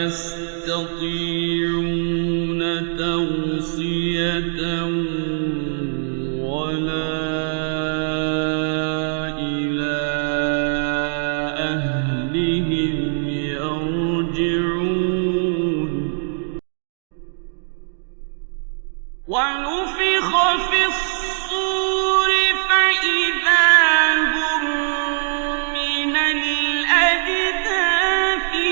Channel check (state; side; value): silent; left; digital silence